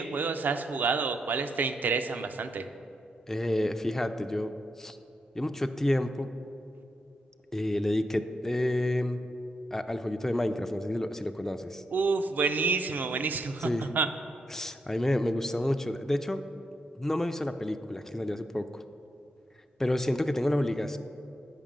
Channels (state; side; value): normal; both; correlation 0.82